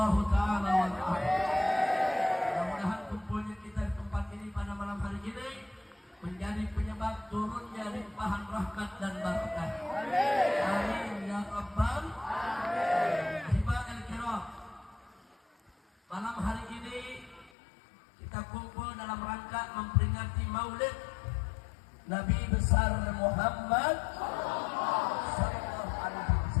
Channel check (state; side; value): drops out; right; at 17.5 s